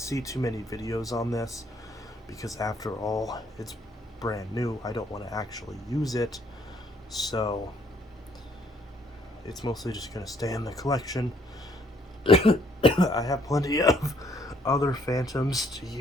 too many videos on this, because after all, it's brand new. I don't want to actually use it, so it's mostly just going to stay in the collection. I have plenty of other Fantoms to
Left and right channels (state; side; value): normal; both; correlation 0.66